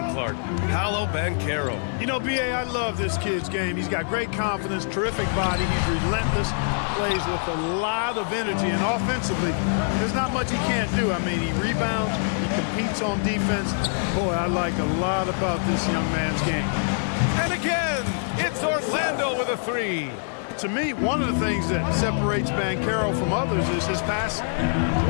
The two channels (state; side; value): silent; right; digital silence